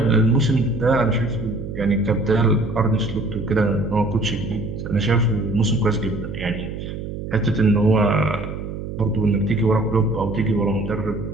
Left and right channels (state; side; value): noise; right; hum, 7 dB below the sound